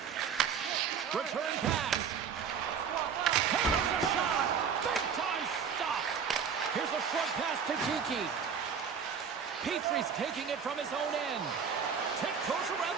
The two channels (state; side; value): quieter; left; 7.0 dB